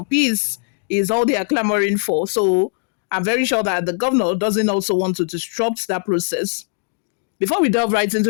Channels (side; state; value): right; silent; 56 dB below the other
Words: Peace is all they are clamoring for. So I'm very sure that the governor doesn't also want to disrupt that process. Before we delve right